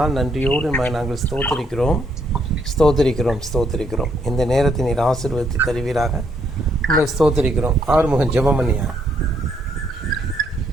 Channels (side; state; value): both; normal; correlation 0.72